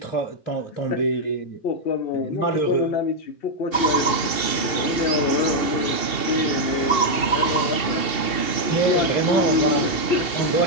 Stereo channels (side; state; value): right; late; 2.7 ms